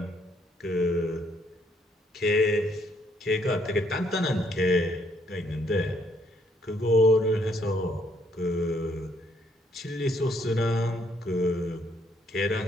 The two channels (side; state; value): both; normal; correlation 0.69